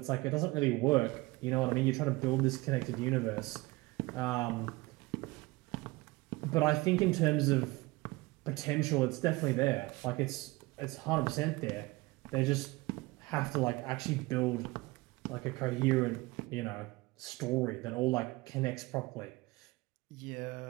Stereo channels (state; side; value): quieter; left; 22.2 dB